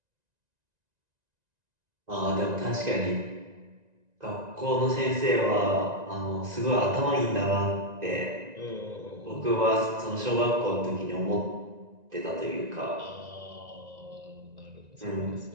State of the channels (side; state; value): left; late; 1.9 ms